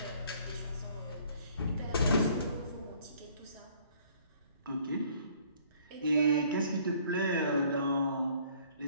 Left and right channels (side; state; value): both; inverted; correlation -0.59